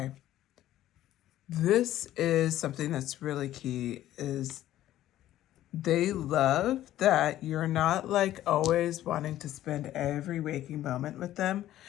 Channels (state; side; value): quieter; right; 13.4 dB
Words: this is something that's really key is they love that you're not like always wanting to spend every waking moment with them.